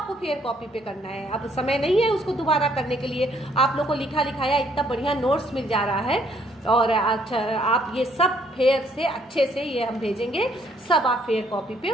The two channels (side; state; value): both; normal; correlation 0.67